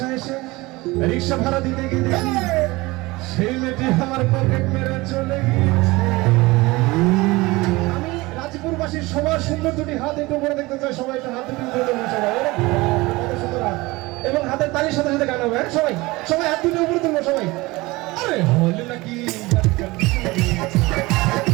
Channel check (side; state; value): left; quieter; 21.7 dB